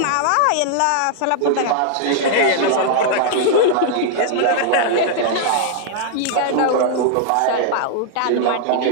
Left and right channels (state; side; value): different; both; correlation -0.01